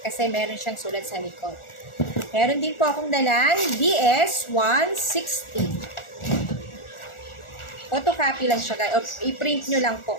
kasi meron siyang sulat sa likod. Meron din po akong dalang DS-160. Photocopy lang siya guys, o i-print nyo lang po.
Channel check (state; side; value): late; right; 1.4 ms